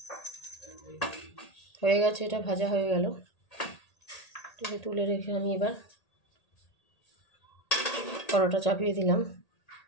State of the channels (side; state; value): right; late; 1.8 ms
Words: হয়ে গেছে, এটা ভাজা হয়ে গেল। এটাকে তুলে রেখে আমি এবার পরোটা চাপিয়ে দিলাম।